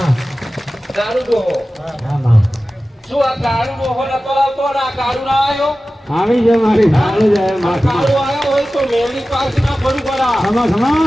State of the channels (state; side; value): normal; both; correlation 0.95